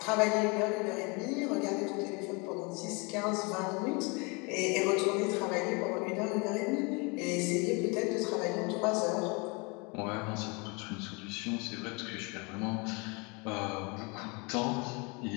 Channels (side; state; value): right; quieter; 29.9 dB